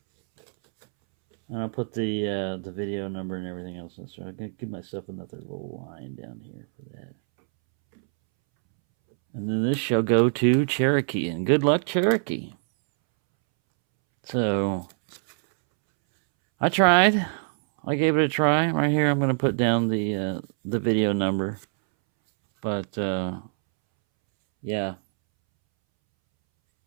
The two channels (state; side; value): silent; left; 62 dB below the other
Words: And I'll put the video number and everything else in. So I'm going to give myself another little line down here for that. And then this shall go to Cherokee. And good luck, Cherokee. So, I tried. I gave it a try. Right here, I'm going to put down the video number. But, yeah.